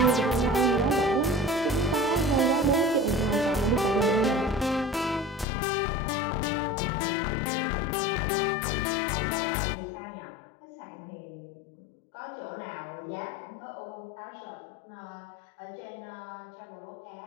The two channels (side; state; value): right; drops out; at 5.5 s